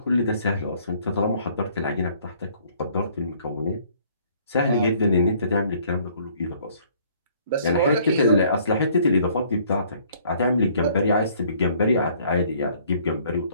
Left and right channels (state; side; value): inverted; both; correlation -0.60